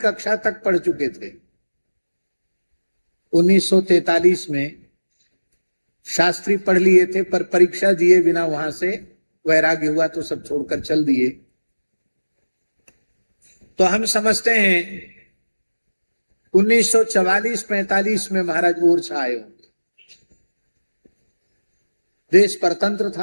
तक पढ़ चुके थे। 1943 में शास्त्री पढ़ लिए थे, पर परीक्षा दिए बिना वहां से वैराग्य हुआ तो सब छोड़कर चल दिए। तो हम समझते हैं 1944-45 में महाराज ओरछा आए होंगे। देश परतंत्र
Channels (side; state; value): both; inverted; correlation -1.00